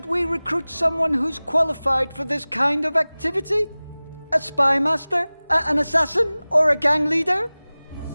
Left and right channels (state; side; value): inverted; both; correlation -0.99